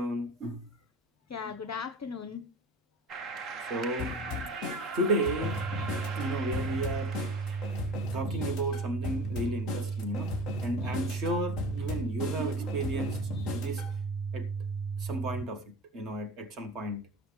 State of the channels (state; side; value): normal; both; correlation 0.37